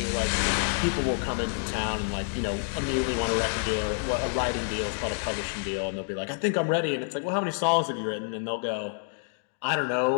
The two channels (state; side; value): silent; right; 59 dB below the other